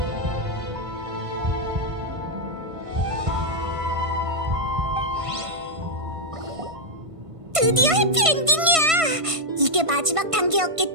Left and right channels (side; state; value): left; late; 1.5 ms